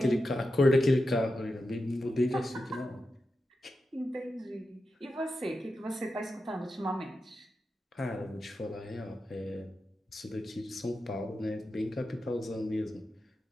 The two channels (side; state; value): both; normal; correlation 0.90